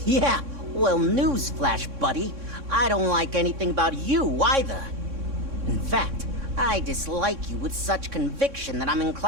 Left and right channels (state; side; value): late; left; 3.6 ms